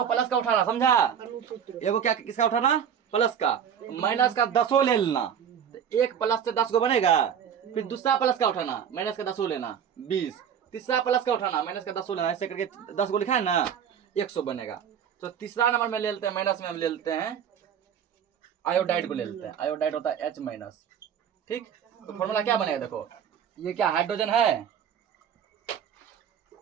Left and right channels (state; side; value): quieter; left; 8.4 dB